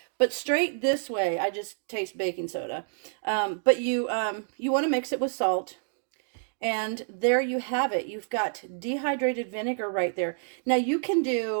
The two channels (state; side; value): silent; left; digital silence